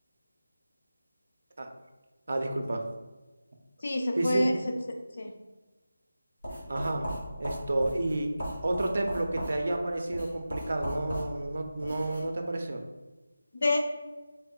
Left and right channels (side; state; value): both; inverted; correlation -0.94